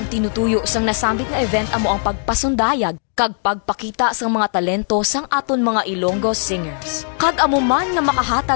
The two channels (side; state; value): right; silent; 64 dB below the other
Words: tinutuyo sang nasambit nga event amo ang pagpasundayag kag pagpakita sang mga talento sang aton mga Ilonggo singers. Kag amo man nga